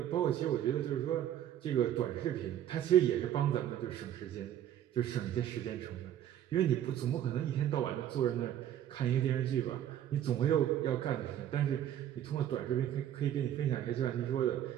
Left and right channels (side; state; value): left; quieter; 11.0 dB